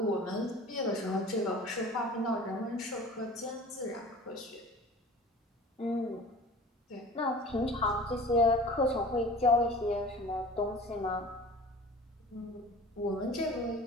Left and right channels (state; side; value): normal; both; correlation 0.41